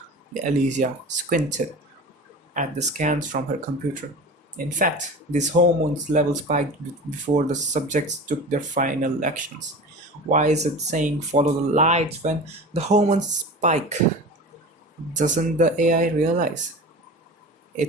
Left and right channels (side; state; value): both; normal; correlation 0.34